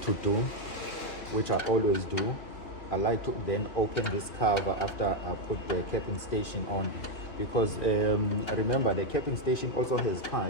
do, which I always do, I like to then open this cover after I put the capping station on, because remember the capping station also has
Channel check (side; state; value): right; late; 2.9 ms